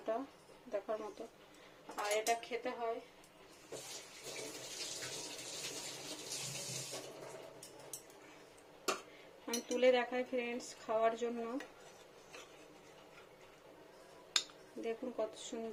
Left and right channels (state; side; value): identical; both; correlation 1.00